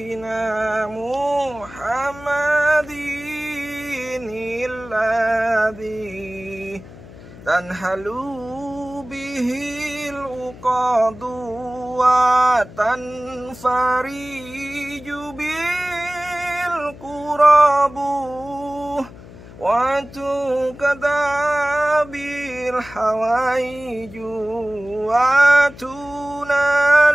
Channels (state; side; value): noise; left; hum, 18 dB below the sound